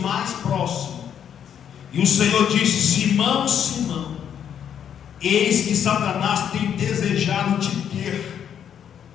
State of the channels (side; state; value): right; quieter; 8.8 dB